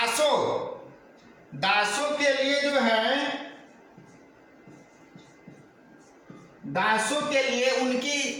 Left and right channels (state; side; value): identical; both; correlation 1.00